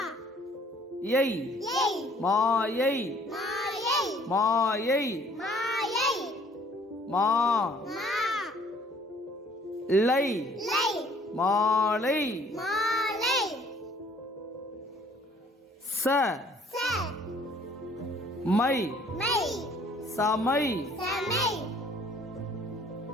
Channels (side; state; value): both; normal; correlation 0.58